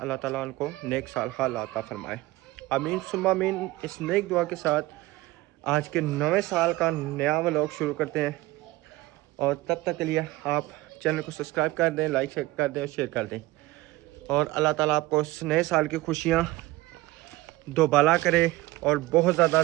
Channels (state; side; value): quieter; left; 18.8 dB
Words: ताला उनको नेक साल हाल अता फरमाए। आमीन सुम्मा आमीन। इस नेक दुआ के साथ आज के नवे साल का नया व्लॉग शुरू करते हैं, और तब तक के लिए आप चैनल को सब्सक्राइब कर दें, लाइक कर दें और शेयर कर दें। और अल्लाह ताला आपको इस नए साल की खुशियाँ दोबाला करे और बहुत ज़्यादा